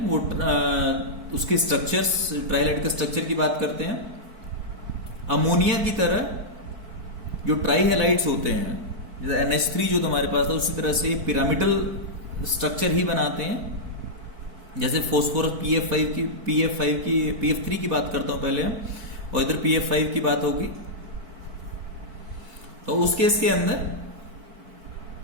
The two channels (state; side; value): late; left; 4.5 ms